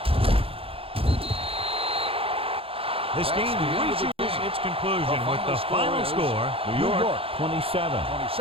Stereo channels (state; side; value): late; left; 0.27 ms